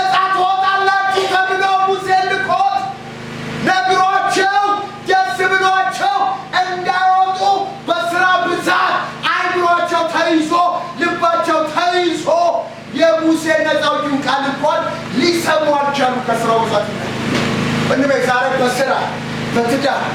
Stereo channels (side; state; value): both; identical; correlation 1.00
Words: ትወጣላችሁ ተብሎ ሙሴ ልኮት ነግሯቸው ደስ ብሏቸው እንዳይወጡ በስራ ብዛት አይምሯቸው ተይዞ ልባቸው ተይዞ የሙሴ ነፃ አውጪውን ቃል እንኳን ሊሰሙ አልቻሉም። ከስራው ብዛት እንበ ዛሬ በስራ በትዳር